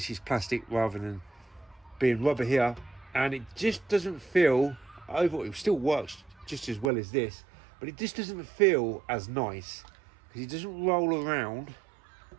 is plastic rather than being rubber here, and it just doesn't feel overall. It still works just as well as this, but it just doesn't feel as nice because it doesn't roll around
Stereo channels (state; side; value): drops out; left; at 6.9 s